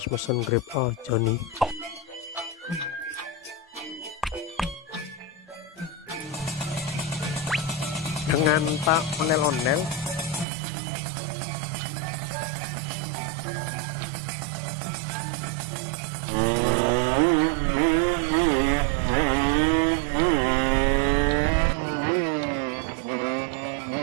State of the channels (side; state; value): left; drops out; at 10.5 s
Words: pesan Grab aja nih. Dengan Pak Onel-Onel. Ya benar. Silakan naik, Pak.